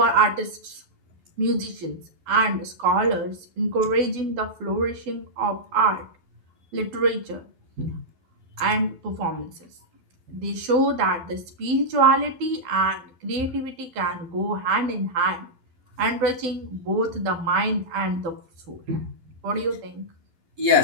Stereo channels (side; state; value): left; late; 12 ms